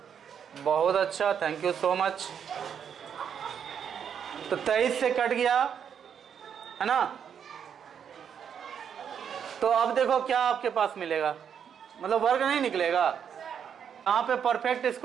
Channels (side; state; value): left; quieter; 7.9 dB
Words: बहुत अच्छा, थैंक यू सो मच। तो 23 से कट गया है ना। तो अब देखो क्या आपके पास मिलेगा, मतलब वर्ग नहीं निकलेगा। यहाँ पे परफेक्ट